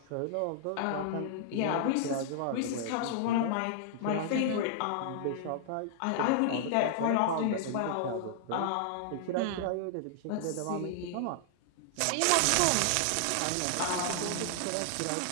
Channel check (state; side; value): different; both; correlation -0.01